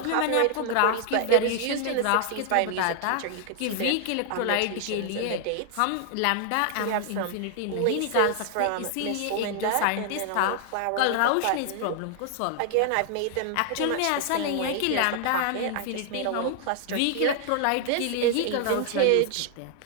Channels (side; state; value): both; different; correlation 0.00